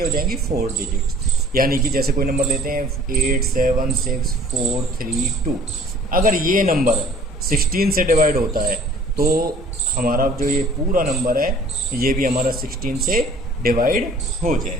हो जाएंगी 4 डिजिट, यानी कि जैसे कोई नंबर लेते हैं 8, 7, 6, 4, 3, 2, अगर ये नंबर 16 से डिवाइड होता है तो हमारा जो ये पूरा नंबर है ये भी हमारा 16 से डिवाइड हो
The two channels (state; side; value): normal; both; correlation 0.53